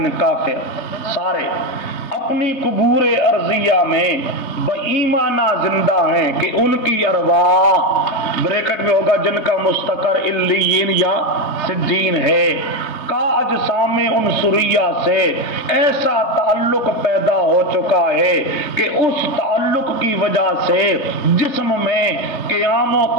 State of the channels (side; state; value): right; late; 3.3 ms